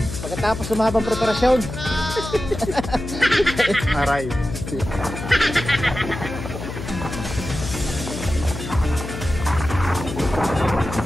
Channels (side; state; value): left; noise; hum, 8 dB below the sound